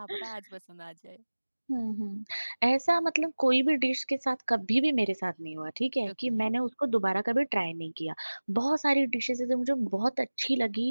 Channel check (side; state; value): both; inverted; correlation -1.00